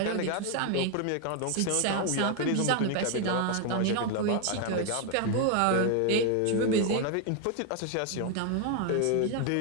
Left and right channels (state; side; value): different; both; correlation 0.01